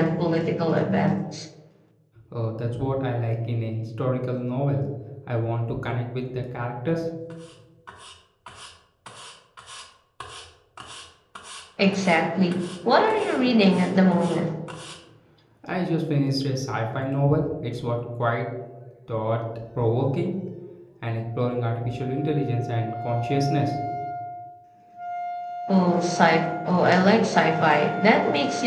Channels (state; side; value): identical; both; correlation 1.00